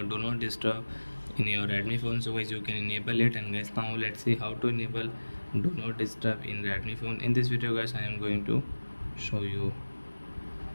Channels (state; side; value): inverted; both; correlation -1.00